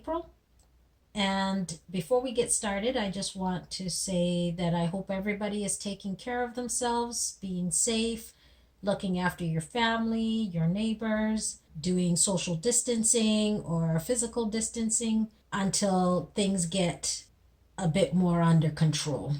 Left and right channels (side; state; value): both; identical; correlation 1.00